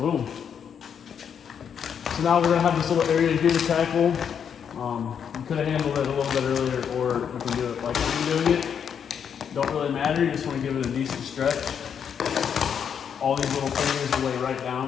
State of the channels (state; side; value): quieter; right; 7.7 dB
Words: So now we're gonna have this little area here to tackle. You could have handled it a little bit earlier, or you can do it like I'm doing it. Don't really matter, you just wanna give it a decent stretch. All these little fingers will lay right